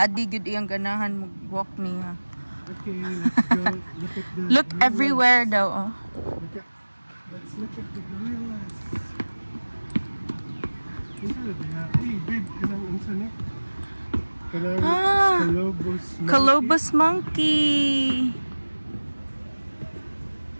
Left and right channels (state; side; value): inverted; both; correlation -1.00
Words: gid iyang ganahan mag-walk niya. Okay, let's go. Look at the Look everywhere daw, oh. Let's look at the gorillas. Hey, babe, kanang unsa ni? Kanang Colobus monkey.